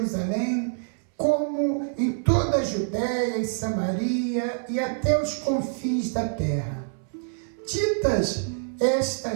como em toda a Judéia e Samaria e até os confins da terra. Ditas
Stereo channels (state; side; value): silent; left; 61 dB below the other